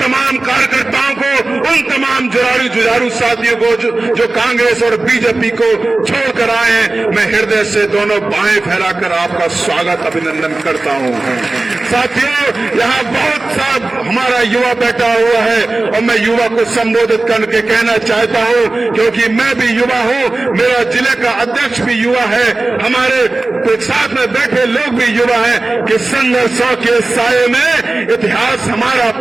कार्यकर्ताओं को, उन तमाम जुझारू साथियों को जो कांग्रेस और बीजेपी को छोड़कर आए हैं, मैं हृदय से दोनों बाहें फैलाकर आपका स्वागत अभिनंदन करता हूं। साथियों, यहाँ बहुत सा हमारा युवा बैठा हुआ है और मैं युवा को संबोधित करके कहना चाहता हूँ, क्योंकि मैं भी युवा हूँ, मेरा जिले का अध्यक्ष भी युवा है, हमारे साथ में बैठे लोग भी युवा हैं, कि संघर्षों के साये में इतिहास हमारा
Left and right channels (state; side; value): quieter; left; 3.1 dB